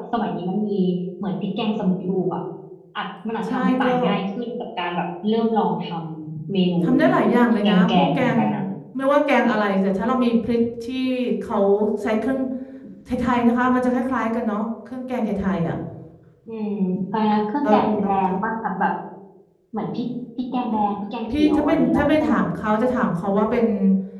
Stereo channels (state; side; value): identical; both; correlation 1.00